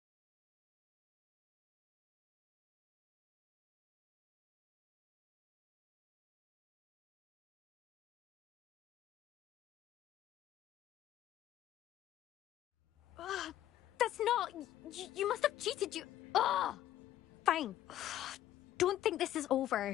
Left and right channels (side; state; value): right; quieter; 12.7 dB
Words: That's not... You must have cheated, you... Ugh! Fine. Don't think this is